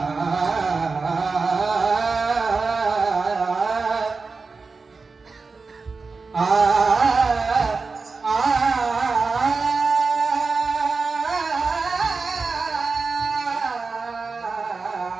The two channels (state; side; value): quieter; left; 4.3 dB